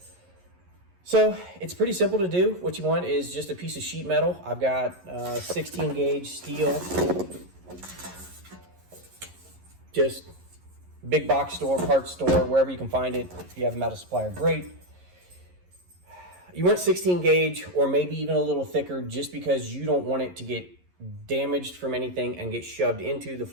So it's pretty simple to do. What you want is just a piece of sheet metal. I've got 16 gauge steel. Just big box store, parts store, wherever you can find it. If you have a metal supplier, great. You want 16 gauge or maybe even a little thicker just because you don't want it to get damaged from anything and get shoved into the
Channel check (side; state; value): left; late; 11 ms